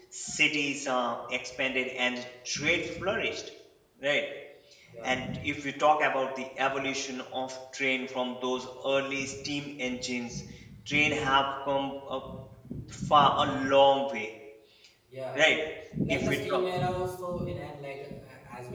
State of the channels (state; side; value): identical; both; correlation 1.00